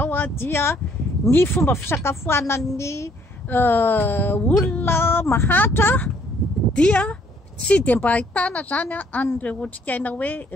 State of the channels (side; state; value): both; normal; correlation 0.64